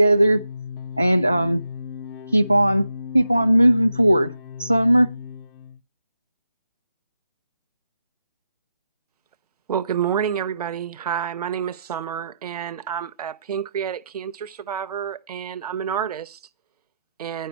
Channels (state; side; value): inverted; both; correlation -0.85